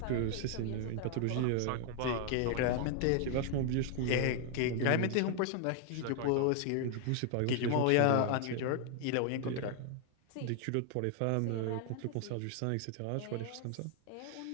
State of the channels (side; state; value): both; different; correlation 0.00